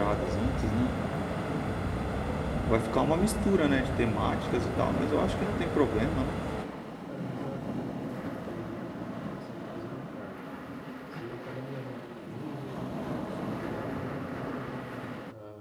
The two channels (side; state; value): both; identical; correlation 1.00